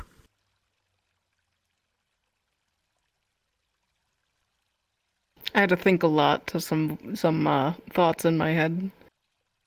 I had to think a lot to some thoughts in my head.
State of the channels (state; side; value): identical; both; correlation 1.00